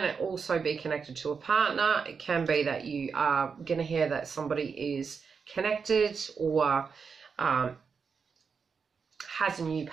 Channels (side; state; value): left; quieter; 5.7 dB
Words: also be connected to a partner. It can be that you are going to hear that somebody is connected or has a new